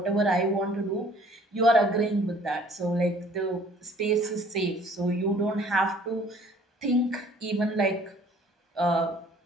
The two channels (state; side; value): normal; both; correlation 0.55